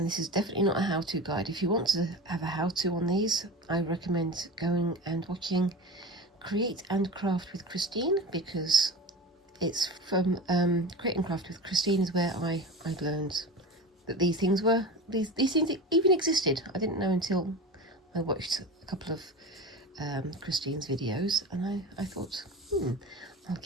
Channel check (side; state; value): both; normal; correlation 0.30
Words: this is definitely not a how-to guide. If you want to have a how-to on these, I recommend going and watching Create and Craft with Christine, because it's from Create and Craft with Christine is where I learned that these things even existed. I didn't know until I watched a couple of Christine's videos, and I thought, I'll